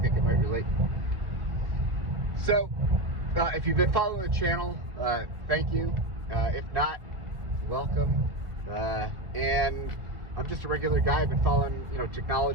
it might relate. So if you've been following the channel, thank you. If not, welcome. And I'm just a regular guy. I've been following,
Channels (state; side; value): late; left; 1.5 ms